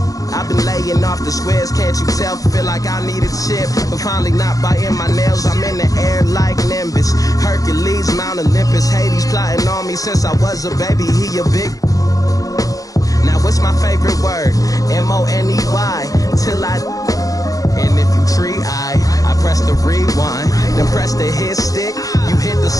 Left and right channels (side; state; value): right; late; 0.17 ms